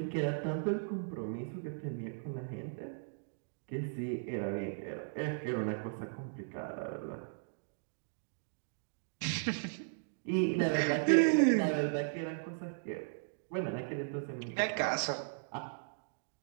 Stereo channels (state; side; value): silent; left; digital silence